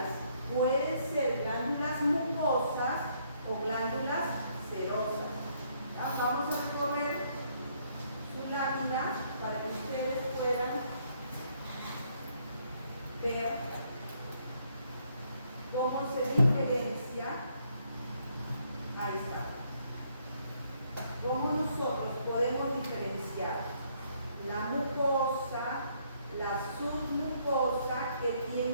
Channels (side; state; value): both; inverted; correlation -0.69